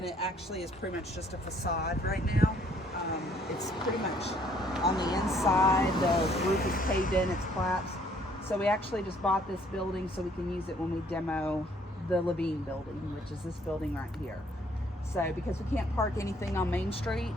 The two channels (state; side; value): normal; both; correlation 0.63